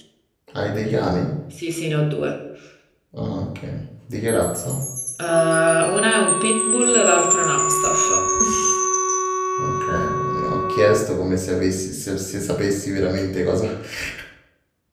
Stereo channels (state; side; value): identical; both; correlation 1.00